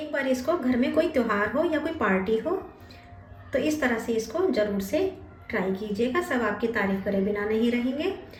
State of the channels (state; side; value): identical; both; correlation 1.00